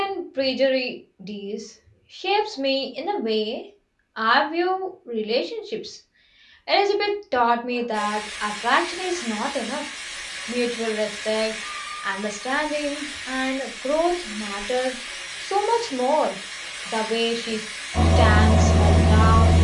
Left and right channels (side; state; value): both; identical; correlation 1.00